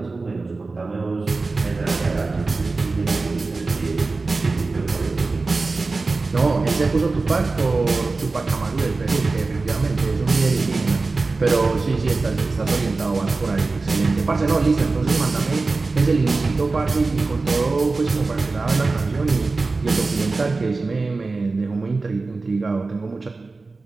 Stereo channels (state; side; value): quieter; left; 3.7 dB